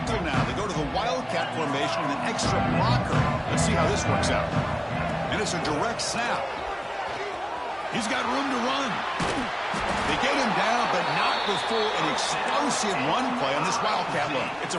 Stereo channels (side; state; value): both; identical; correlation 1.00